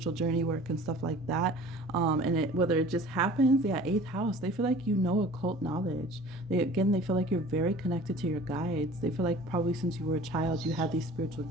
journey work and stuff like that. And whether it just happens, yeah, 8th house. They feel like occult knowledge. They feel like you're very connected to your guides. They feel like probably since you were a child, you had these spiritual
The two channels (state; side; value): normal; both; correlation 0.45